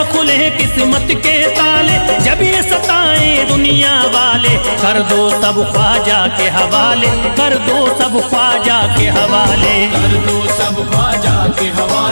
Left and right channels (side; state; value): both; inverted; correlation -1.00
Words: खुले किस्मत के ताले, जब ये सताए दुनिया वाले, कर दो सब ख्वाजा के हवाले, कर दो सब ख्वाजा के हवाले। कर दो सब ख्वाजा के